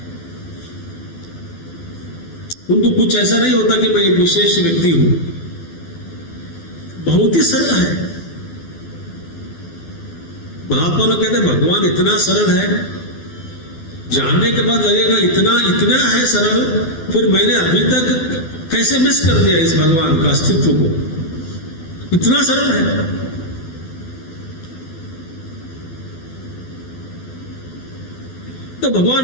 उनको कुछ ऐसा नहीं होता कि मैं एक विशेष व्यक्ति हूं। बहुत ही सरल है। महात्मा लोग कहते हैं भगवान इतना सरल है, जानने के बाद लगेगा इतना इतना है सरल, फिर मैंने अभी तक कैसे मिस कर दिया इस भगवान का अस्तित्व को। इतना सरल है। तो भगवान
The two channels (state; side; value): late; right; 12 ms